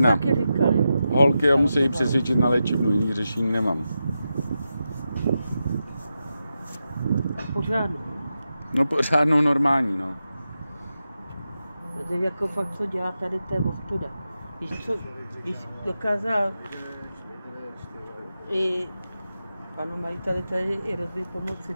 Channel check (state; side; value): inverted; both; correlation -0.89